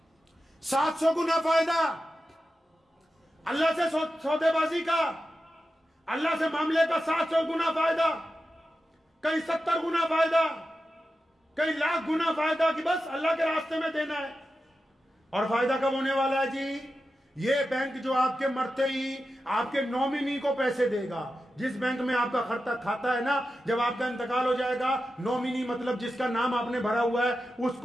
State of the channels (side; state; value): both; normal; correlation 0.91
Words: 700 गुना फायदा अल्लाह से सौदेबाजी का, अल्लाह से मामले का 700 गुना फायदा, कई 70 गुना फायदा, कई लाख गुना फायदा कि बस अल्लाह के रास्ते में देना है। और फायदा कब होने वाला है जी? ये बैंक जो आपके मरते ही आपके नॉमिनी को पैसे देगा, जिस बैंक में आपका खाता है ना, जब आपका इंतकाल हो जाएगा, नॉमिनी मतलब जिसका नाम आपने भरा हुआ है